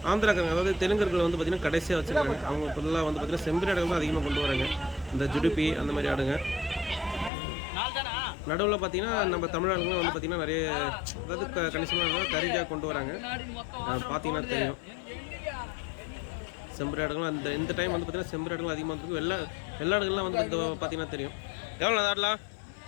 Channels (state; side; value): drops out; right; at 7.3 s